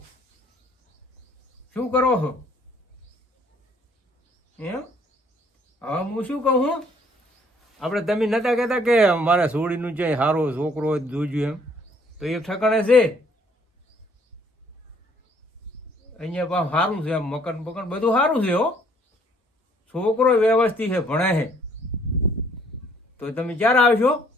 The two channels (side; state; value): both; normal; correlation 0.62